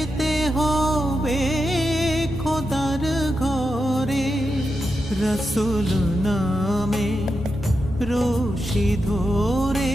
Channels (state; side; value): normal; both; correlation 0.87